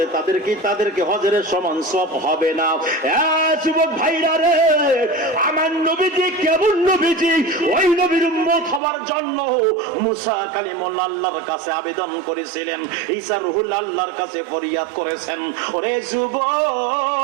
তাদেরকে হজের সমান সওয়াব হবে না। যুবক ভাইরা রে, আমার নবীজি কেমন নবীজি, ওই নবীর উম্মত হওয়ার জন্য মুসা কালিমুল্লাহ আল্লাহর কাছে আবেদন করেছিলেন, ঈসা রূহুল আল্লাহর কাছে ফরিয়াদ করেছেন। ওরে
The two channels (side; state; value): left; drops out; at 8.8 s